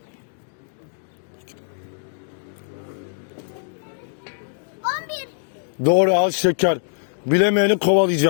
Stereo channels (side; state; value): right; silent; digital silence